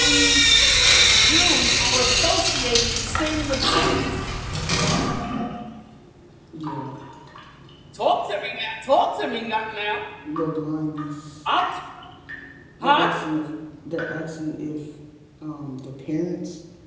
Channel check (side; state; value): both; identical; correlation 1.00